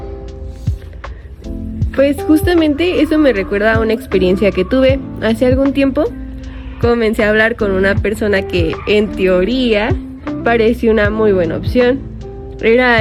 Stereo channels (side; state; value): both; identical; correlation 1.00